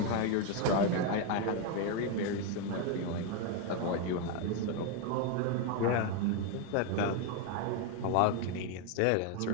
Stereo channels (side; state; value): both; different; correlation 0.01